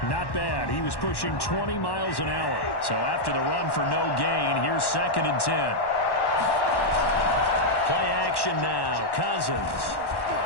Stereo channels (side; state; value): right; late; 1.1 ms